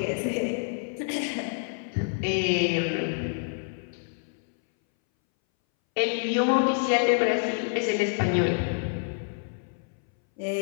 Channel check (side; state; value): right; silent; 60 dB below the other